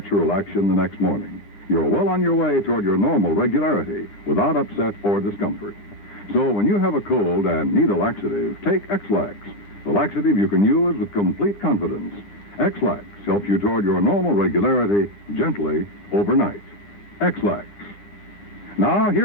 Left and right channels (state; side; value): late; right; 9.5 ms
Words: action the next morning. You're well on your way toward your normal regularity, without upset or discomfort. So when you have a cold and need a laxative, take X-Lax, the laxative you can use with complete confidence. X-Lax helps you toward your normal regularity gently overnight. X-Lax. Now,